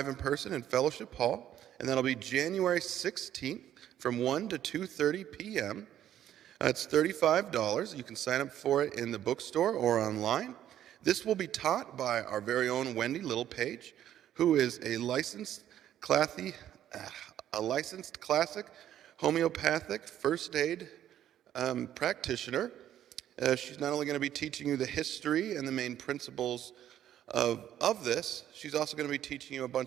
in person in Fellowship Hall. And that'll be January 16th from 1 to 2:30 p.m. It's $35. You can sign up for it in the bookstore or online. This will be taught by our very own Wendy Littlepage, who is a licensed classic homeopathic first aid practitioner. She's not only going to be teaching you the history and the main principles of this, she's also going to be teaching you a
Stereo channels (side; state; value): left; quieter; 11.3 dB